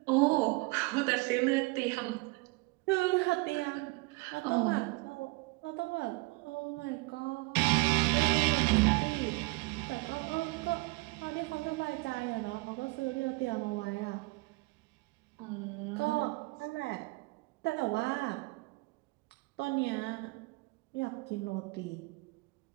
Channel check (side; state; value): left; quieter; 25.7 dB